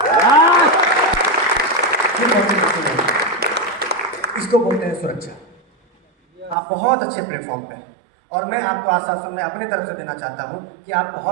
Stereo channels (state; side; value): drops out; left; at 6.6 s